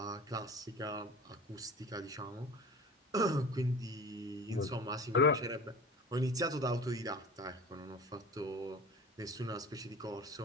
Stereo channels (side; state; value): both; normal; correlation 0.37